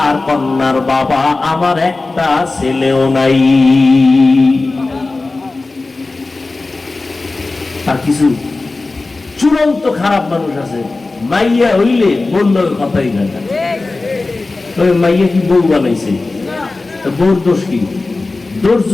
কন্যার বাবা, আমার একটা ছেলেও নাই। আর কিছু চূড়ান্ত খারাপ মানুষ আছে, মাইয়া হইলে বললো কথাই না, তবে মাইয়া কি বউ বানাইছে, বউর দোষ কি? দোষ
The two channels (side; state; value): right; quieter; 3.4 dB